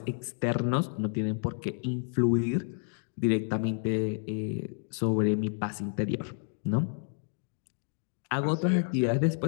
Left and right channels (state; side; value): silent; right; 58 dB below the other